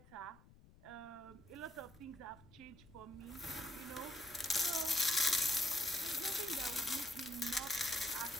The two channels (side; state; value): left; noise; rumble, 23 dB below the sound